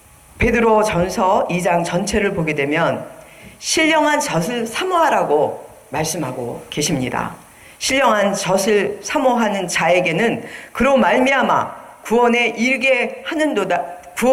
베드로 전서 2장 전체를 보게 되면 신령한 젖을 사모하라고 말씀하고 계십니다. 신령한 젖을 사모하는 자에게는 그로 말미암아 구원에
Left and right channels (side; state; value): both; identical; correlation 1.00